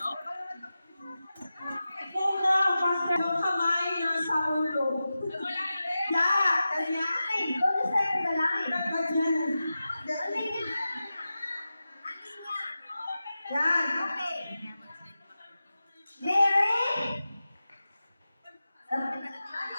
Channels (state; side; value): inverted; both; correlation -0.93